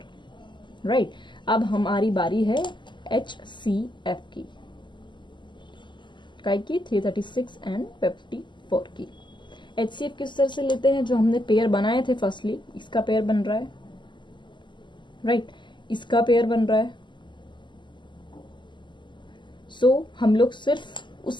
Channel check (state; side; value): late; right; 0.22 ms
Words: राइट। अब हमारी बारी है एचसीएफ की, काय की 336 एंड 54 की। एचसीएफ किस तरह से लेते हैं, जो हमने पेयर बनाए थे फर्स्टली, इसका पेयर बन रहा है, राइट, इसका पेयर बन रहा है। सो हम लोग सिर्फ